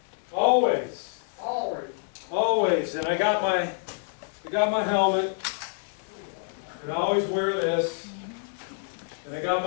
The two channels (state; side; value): silent; right; 60 dB below the other